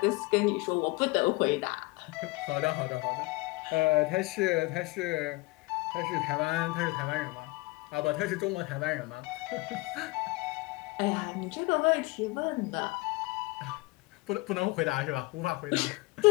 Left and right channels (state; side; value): quieter; right; 23.3 dB